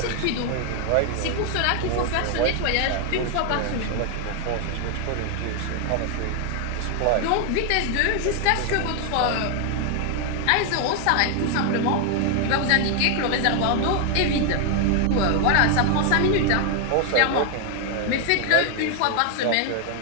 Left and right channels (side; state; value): both; different; correlation 0.00